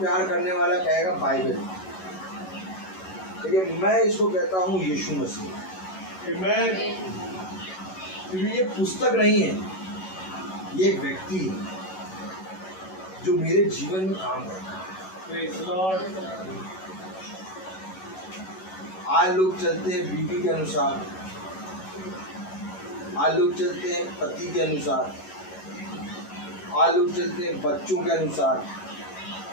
करने वाला कहेगा बाइबल, लेकिन मैं इसको कहता हूँ यीशु मसीह। Amen। क्योंकि ये पुस्तक नहीं है, ये एक व्यक्ति है जो मेरे जीवन में काम करता है। Praise the Lord। आज लोग चलते हैं बीवी के अनुसार, आज लोग चलते हैं पति के अनुसार, आज लोग चलते हैं बच्चों के अनुसार,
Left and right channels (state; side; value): late; right; 11 ms